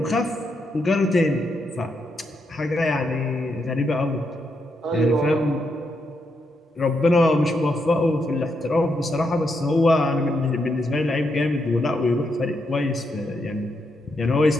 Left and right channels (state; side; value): normal; both; correlation 0.81